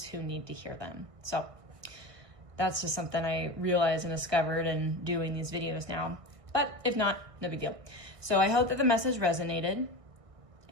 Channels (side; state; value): left; late; 1.6 ms